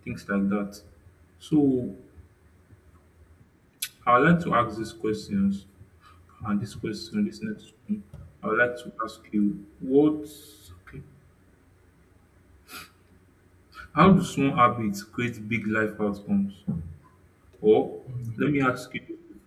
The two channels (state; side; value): identical; both; correlation 1.00